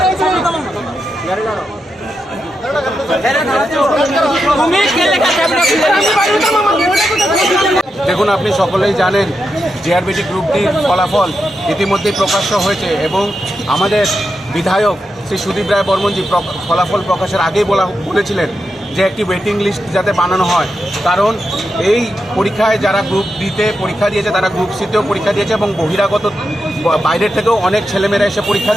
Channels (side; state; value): both; normal; correlation 0.87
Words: দেখুন, আপনি সকলেই জানেন জেআরবিটি গ্রুপ ডির ফলাফল ইতিমধ্যেই প্রকাশ্য হয়েছে এবং আমাদের বিধায়ক শ্রী সুদীপ রায় বর্মনজি ফলাফল প্রকাশের আগেই বলেছিলেন যে একটি ওয়েটিং লিস্ট যাতে বানানো হয়, কারণ এই পরীক্ষায় যারা গ্রুপ ডিতে পরীক্ষা দিয়েছে তারা গ্রুপ সিতেও পরীক্ষা দিয়েছে এবং বহিরাগত বাইরের থেকেও অনেক ছেলেমেয়েরা এসে পরীক্ষা